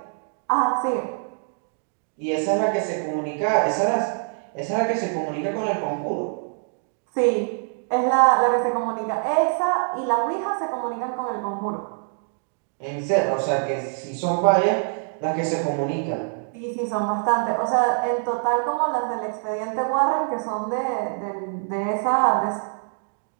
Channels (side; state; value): left; silent; digital silence